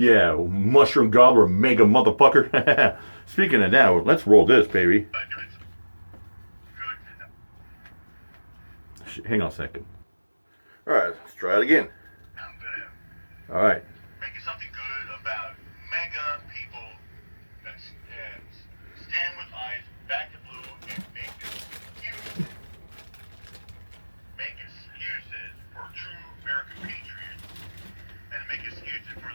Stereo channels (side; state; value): both; inverted; correlation -1.00